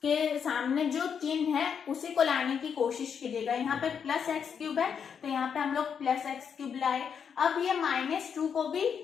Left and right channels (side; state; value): right; quieter; 7.2 dB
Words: के सामने जो चिन्ह है उसी को लाने की कोशिश कीजिएगा। यहाँ पे प्लस x³ है तो यहाँ पे हम लोग प्लस x³ लाए। अब ये -2 को भी